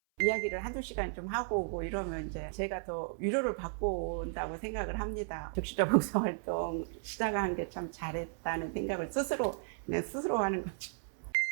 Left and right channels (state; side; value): silent; left; 55 dB below the other